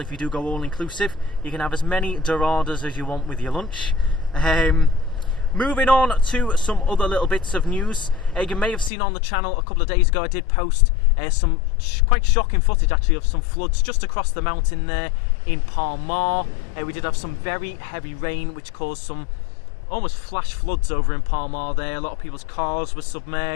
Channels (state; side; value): drops out; right; at 8.9 s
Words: If you do go all-inclusive, you can have as many doradas as you want with your lunch. Moving on to some other little bits of news. You may have seen on the channel a couple of days ago I did post some quite shocking footage actually of some floods just across the mountain there in Palmar. We did have some very heavy rain which caused some almost flash floods over in Palmar there. A lot of people's cars were